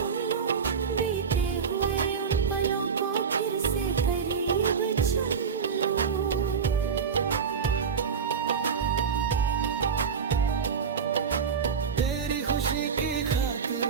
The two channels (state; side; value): quieter; left; 6.2 dB